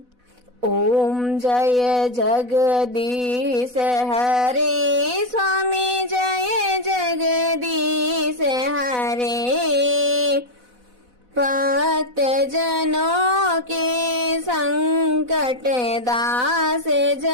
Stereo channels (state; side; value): late; left; 4.1 ms